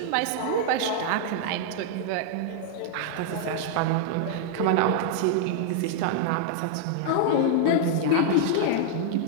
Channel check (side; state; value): both; different; correlation -0.01